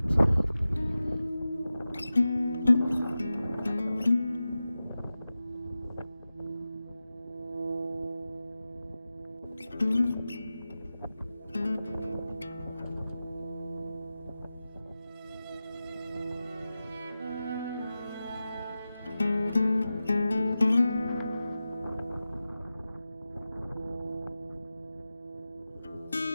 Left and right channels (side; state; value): both; inverted; correlation -0.94